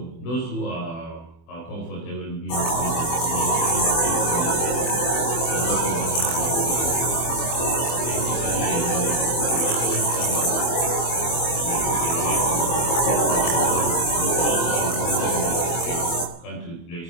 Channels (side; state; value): right; late; 24 ms